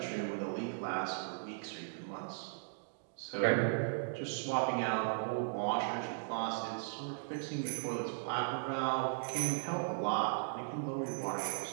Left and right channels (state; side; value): silent; left; digital silence